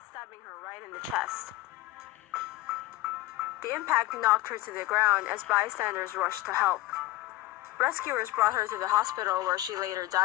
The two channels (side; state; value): right; quieter; 17.4 dB